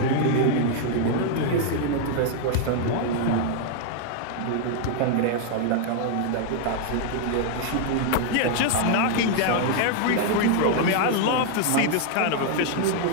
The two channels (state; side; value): different; both; correlation 0.00